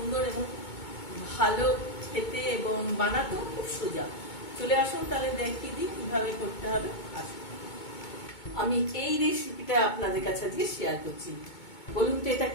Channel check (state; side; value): late; right; 2.2 ms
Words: এবং ভালো খেতে এবং বানাতেও খুব সোজা। চলে আসুন তাহলে দেখিয়ে দিই কিভাবে করতে হবে। আসুন, আমি এই রেসিপিটা আপনাদের কাছে আজকে শেয়ার করছি। বলুন তো এটা